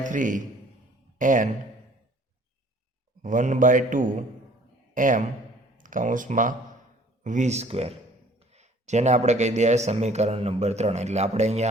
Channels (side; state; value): both; normal; correlation 0.54